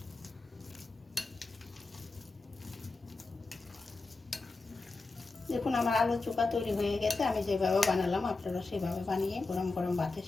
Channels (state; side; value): quieter; right; 3.6 dB